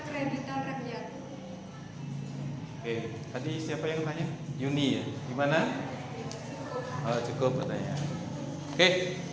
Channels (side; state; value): right; noise; hum, 27 dB below the sound